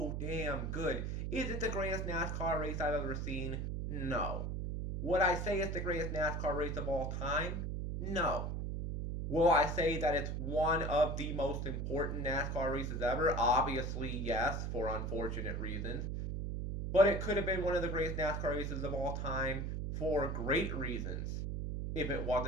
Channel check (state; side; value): noise; right; hum, 2 dB below the sound